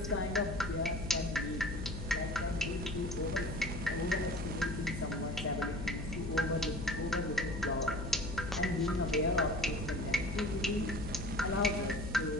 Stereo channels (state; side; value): noise; left; hum, 6 dB below the sound